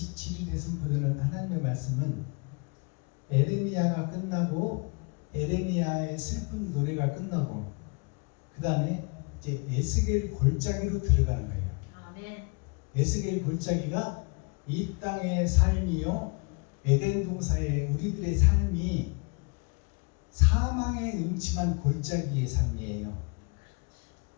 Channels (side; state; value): right; quieter; 32.4 dB